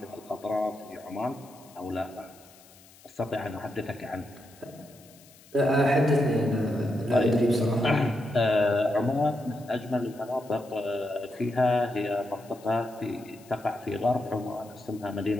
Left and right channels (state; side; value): noise; left; hiss, 24 dB below the sound